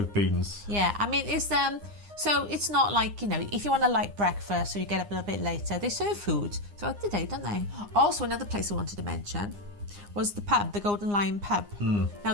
beans. Yeah, I mean it's so it's not like, you know, if you want a light breakfast or you get up a little bit later, they serve food throughout the day, don't they? Also, another place I wanted to mention was the pub, the Golden Lion pub. Now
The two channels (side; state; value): left; late; 9.8 ms